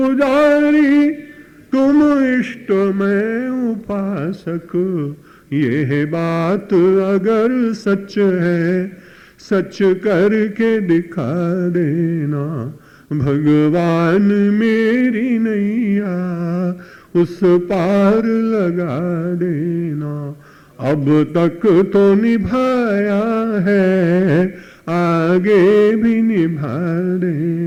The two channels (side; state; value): both; identical; correlation 1.00